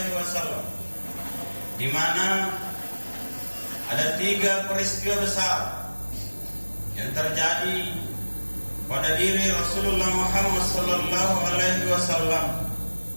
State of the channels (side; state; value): both; inverted; correlation -1.00